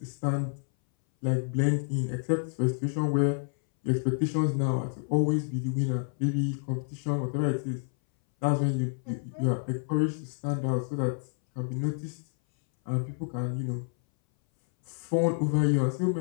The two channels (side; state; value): right; silent; 59 dB below the other